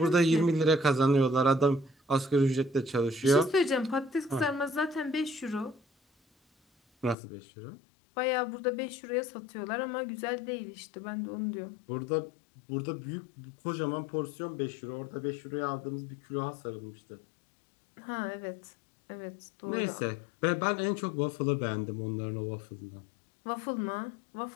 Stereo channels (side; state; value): right; drops out; at 7.2 s